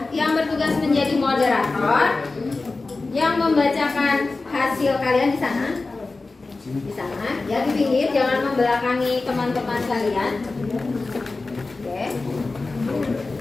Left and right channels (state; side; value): quieter; right; 3.6 dB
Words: yang bertugas menjadi moderator, yang membacakan hasil kalian di sana. Di sana, ya di pinggir, jangan membelakangi teman-teman kalian. Oke.